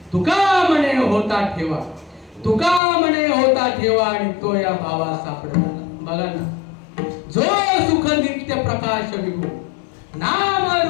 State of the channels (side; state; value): right; drops out; at 2.8 s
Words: तुका म्हणे होता ठेवा तुका म्हणे होता ठेवा आणि तो या भावा सापडला. बघा ना जो सुख नित्य प्रकाश विभू नाम